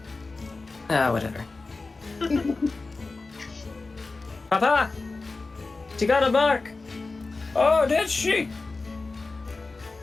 Whatever. Papa, she got a mark. Oh, did she?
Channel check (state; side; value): quieter; right; 3.7 dB